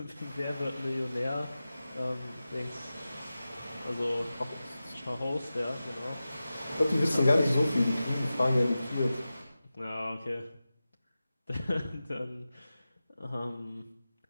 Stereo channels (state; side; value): inverted; both; correlation -0.95